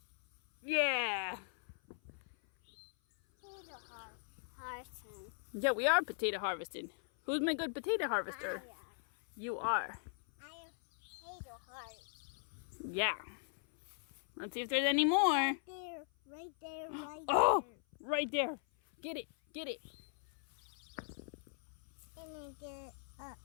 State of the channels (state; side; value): silent; right; 51 dB below the other